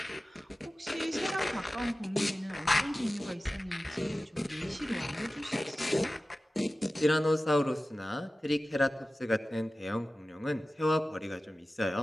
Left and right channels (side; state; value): both; normal; correlation 0.96